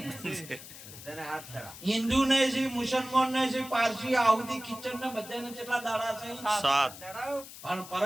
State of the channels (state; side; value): noise; left; hiss, 15 dB below the sound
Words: હિન્દુ ને છે, મુસલમાન ને છે, પારસી, આહુદી, કિચન ને બધાને કેટલા દાડા છે? 7. પણ